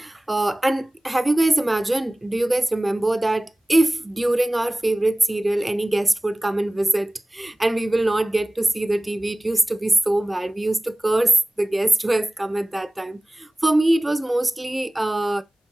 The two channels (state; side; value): normal; both; correlation 0.98